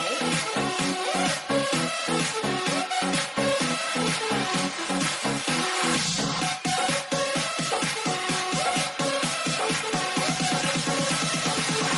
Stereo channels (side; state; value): both; identical; correlation 1.00